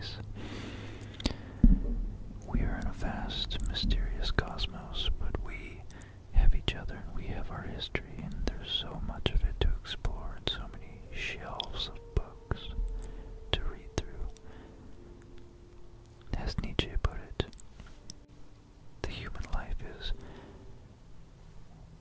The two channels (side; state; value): both; identical; correlation 1.00